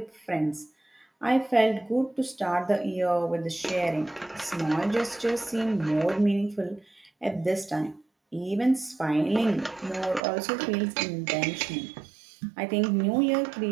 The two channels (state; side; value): drops out; left; at 10.2 s